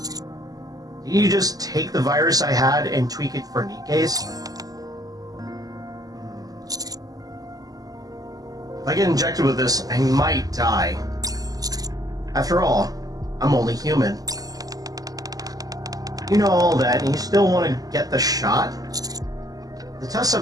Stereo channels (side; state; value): left; late; 0.17 ms